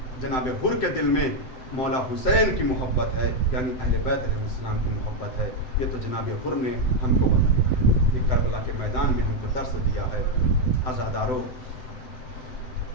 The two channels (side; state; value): right; late; 7.9 ms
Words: جناب حر کے دل میں مولا حسین کی محبت ہے, یعنی اہل بیت علیہ السلام کی محبت ہے. یہ تو جناب حر نے ہم کو بتایا, یہ کربلا کے میدان میں ہم کو درس دیا ہے. عزادارو,